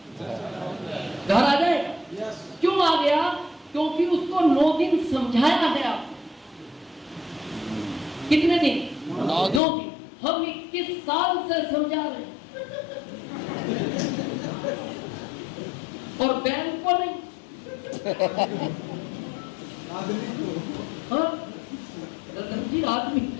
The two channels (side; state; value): right; drops out; at 9.6 s